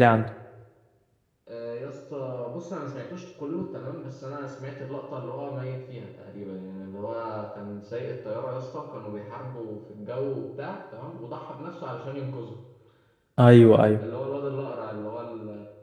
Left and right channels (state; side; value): identical; both; correlation 1.00